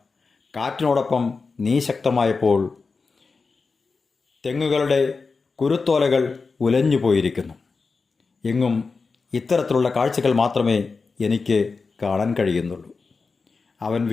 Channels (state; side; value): quieter; right; 4.5 dB